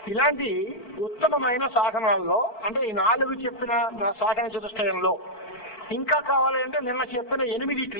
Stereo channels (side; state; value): right; late; 4.4 ms